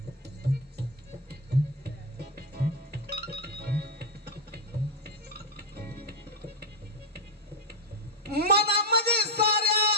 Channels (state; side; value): normal; both; correlation 0.05